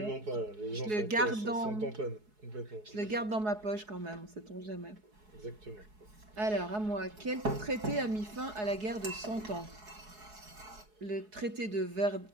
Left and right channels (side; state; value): left; late; 4.7 ms